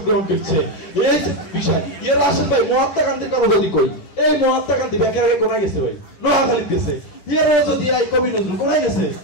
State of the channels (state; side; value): late; right; 11 ms